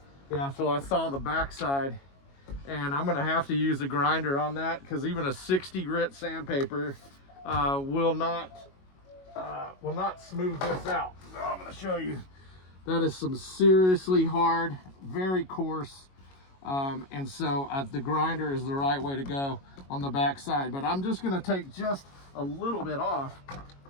Yeah, so I saw the backside, and I'm gonna have to use a grinder on that because even a 60 grit sandpaper will not smooth this out. So I'm gonna show you. That is some seriously hard, very coarse, and so the grinder is the right way to go on the back side. But I'm just going to take just a little bit off,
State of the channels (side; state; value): right; late; 22 ms